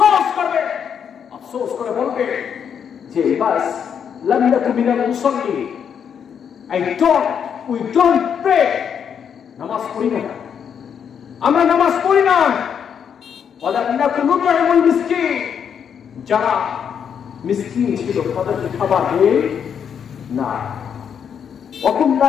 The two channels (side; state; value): right; quieter; 7.7 dB